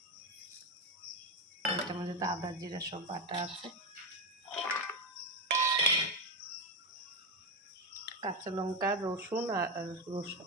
এটার মধ্যে তো আদা জিরা সব বাটা আছে, কাঁচা লঙ্কা, রসুন আর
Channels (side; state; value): both; normal; correlation 0.11